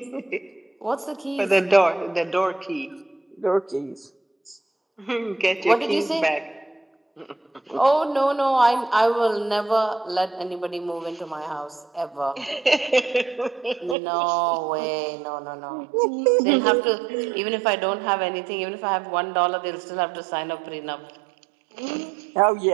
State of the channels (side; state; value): left; drops out; at 14.0 s